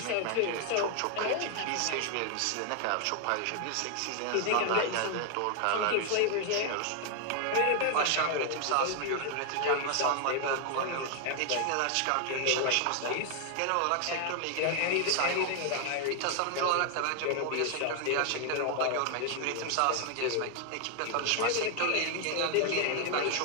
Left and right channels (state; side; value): different; both; correlation 0.00